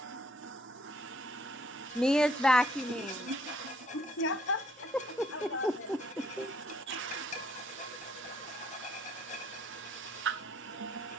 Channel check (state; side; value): normal; both; correlation 0.65